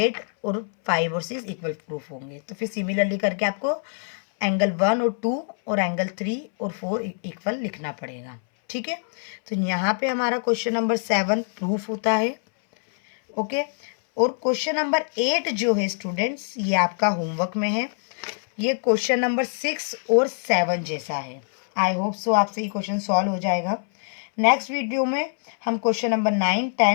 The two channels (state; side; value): silent; right; 62 dB below the other